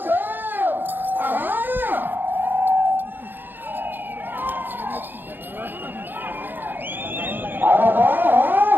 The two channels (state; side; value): late; left; 0.094 ms